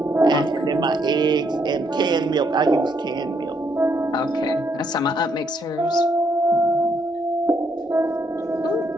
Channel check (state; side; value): normal; both; correlation 0.73